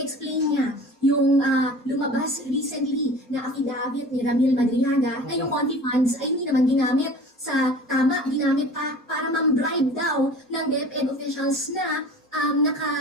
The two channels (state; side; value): normal; both; correlation 0.42